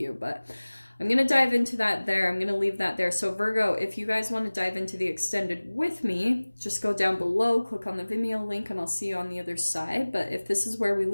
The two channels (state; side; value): inverted; both; correlation -1.00